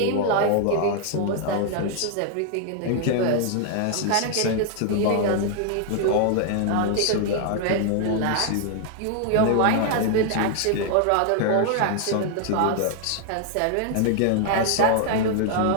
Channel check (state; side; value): different; both; correlation 0.00